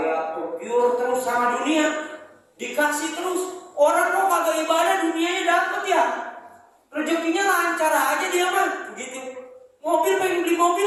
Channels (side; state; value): both; identical; correlation 1.00